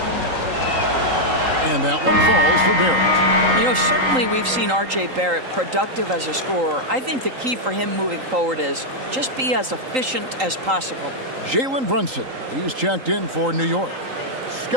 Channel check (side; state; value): left; late; 3.8 ms